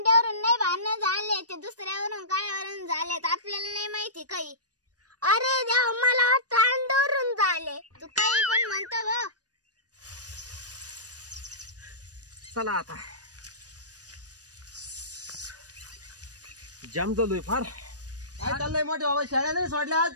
नाही भांडणं झाले, ते दुसऱ्यावरून कायावरून झालेत. आपल्याला नाही माहिती काही. अरे देवा मला वाटतं अंड्यावरून झाले. तू काही पण म्हणतो ग. चला आता जाम झालोय फार. काय चाललंय मोठे बाबा शाळा नाही सोडल्या आज?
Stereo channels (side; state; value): left; late; 0.68 ms